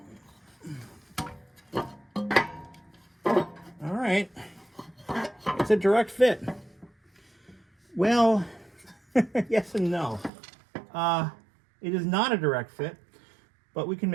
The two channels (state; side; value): drops out; left; at 10.3 s